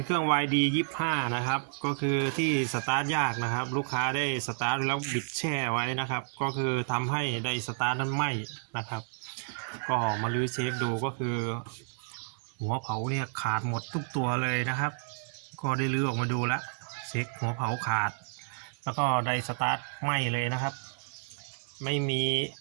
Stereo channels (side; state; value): left; silent; 57 dB below the other